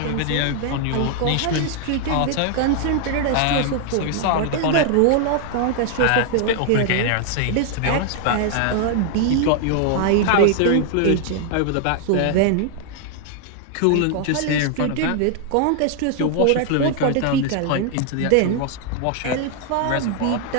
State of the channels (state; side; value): different; both; correlation 0.00